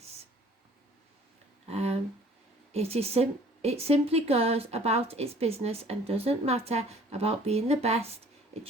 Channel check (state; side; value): normal; both; correlation 0.53